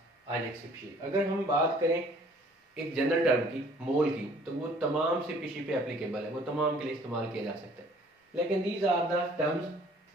ionic species. अगर हम बात करें एक general term की, मोल की, तो वो तमाम स्पीशीज पे एप्लीकेबल है, वो तमाम के लिए इस्तेमाल किया जा सकता है. लेकिन these are the terms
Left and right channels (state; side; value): normal; both; correlation 0.56